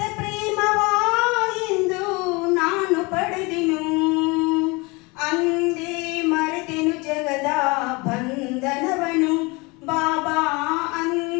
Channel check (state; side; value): quieter; right; 26.4 dB